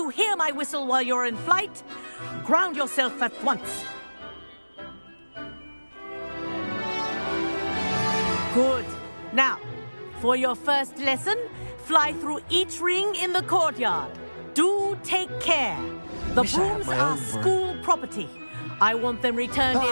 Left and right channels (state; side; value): inverted; both; correlation -1.00